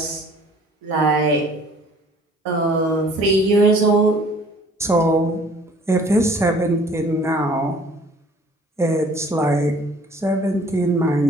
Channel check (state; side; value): normal; both; correlation 0.54